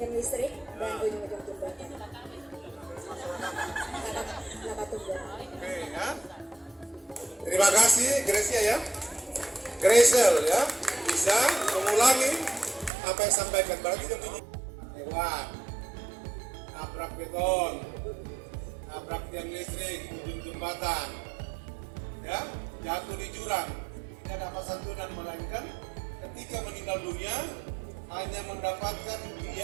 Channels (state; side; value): drops out; left; at 12.9 s